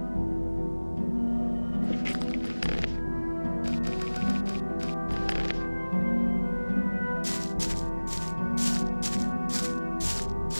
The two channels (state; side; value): inverted; both; correlation -1.00